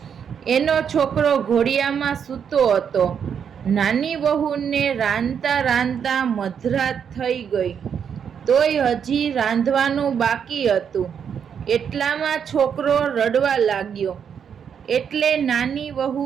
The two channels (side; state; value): left; quieter; 7.6 dB